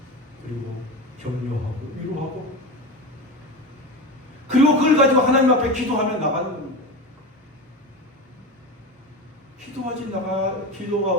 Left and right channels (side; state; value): both; normal; correlation 0.24